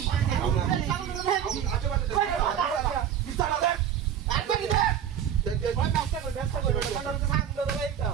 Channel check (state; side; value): quieter; left; 9.3 dB